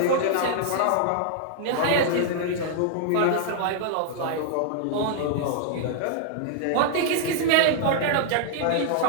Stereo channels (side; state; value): both; different; correlation 0.00